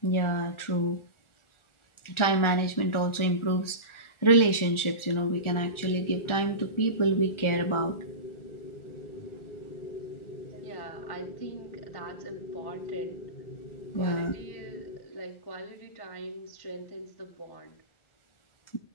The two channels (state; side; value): late; right; 1.4 ms